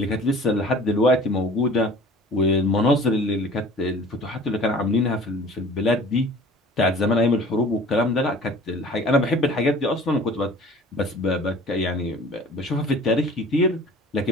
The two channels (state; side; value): normal; both; correlation 0.46